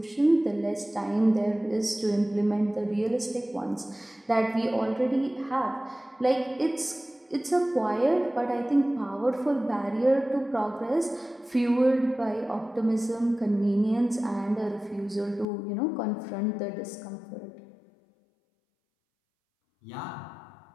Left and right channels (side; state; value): right; drops out; at 15.5 s